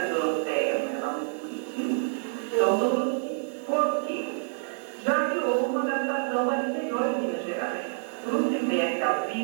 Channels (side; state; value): left; silent; 56 dB below the other